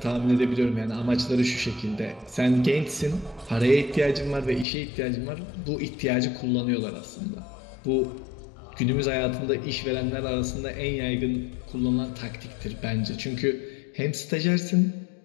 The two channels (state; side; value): drops out; right; at 4.7 s